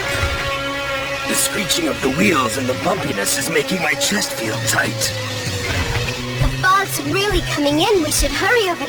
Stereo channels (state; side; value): identical; both; correlation 1.00